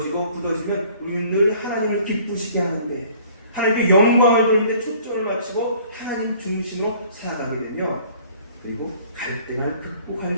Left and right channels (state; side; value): inverted; both; correlation -0.54